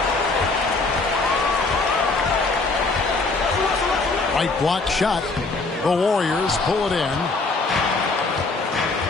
Right block shot. The Warriors pull it in.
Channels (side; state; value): right; quieter; 3.6 dB